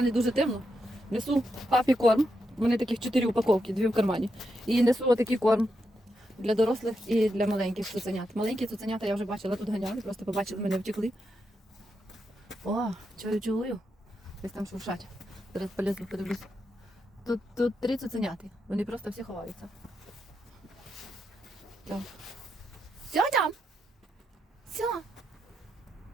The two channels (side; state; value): both; normal; correlation 0.84